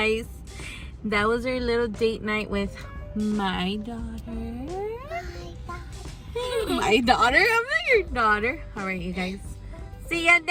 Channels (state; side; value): identical; both; correlation 1.00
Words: That was our little date night with my daughter. My daughter? I'm not your daughter. All right, you guys. See ya